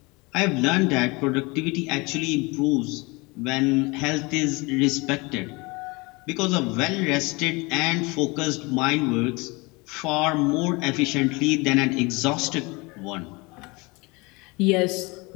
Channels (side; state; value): right; quieter; 25.9 dB